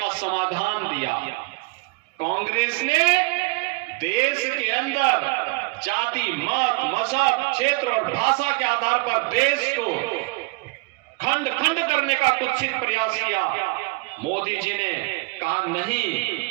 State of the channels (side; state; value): left; quieter; 26.2 dB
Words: समाधान दिया। कांग्रेस ने देश के अंदर जाति, मत, मजहब, क्षेत्र और भाषा के आधार पर देश को खंड खंड करने का कुत्सित प्रयास किया। मोदी जी ने कहा नहीं,